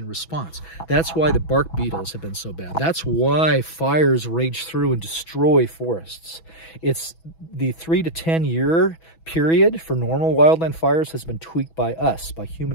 response. That's why the bark beetles have been so bad. That's why fires rage through and destroy forests. It's the 3 to 10 year period for normal wildland fires has been tweaked by us, by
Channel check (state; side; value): late; right; 6.1 ms